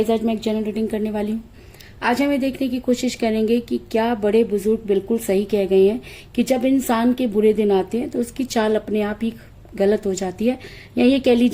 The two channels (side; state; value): both; identical; correlation 1.00